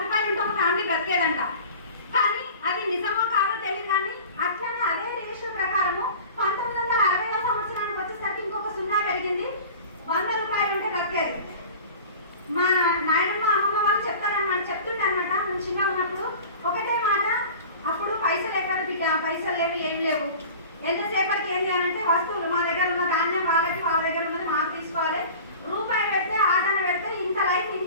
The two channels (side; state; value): both; inverted; correlation -0.39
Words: రూపాయలు ఉంటే ఒక ఫ్యామిలీ బ్రతికేదంట. కానీ అది నిజమో కాదో తెలియదు. కానీ అట్లనే అదే రేషియో ప్రకారము 1960వ సంవత్సరానికి వచ్చేసరికి ఇంకొక 0 పెరిగింది. 100 రూపాయలు ఉంటే బ్రతికేది. మా నాయనమ్మ అమ్మమ్మ వాళ్ళు చెప్తుండే అనమాట. మేము చిన్నగా ఉన్నప్పుడు ఒకటే మాట, అప్పుడు పైసలు ఎక్కడ, పైసలు లేవు, ఏం లేవు. ఎంతసేపటికి ఏం చేయాలంటే, వస్తువులు మా దగ్గర ఉన్న ధాన్యం వాళ్ళకి, వాళ్ళ దగ్గర ఉన్నది మాకు తీసుకోవాలి. రూపాయి పెడితే, ఆటన పెడితే ఇంత లైఫ్